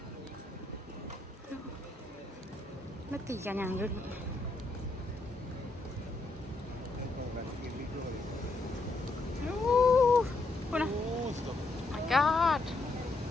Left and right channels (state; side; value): quieter; right; 3.2 dB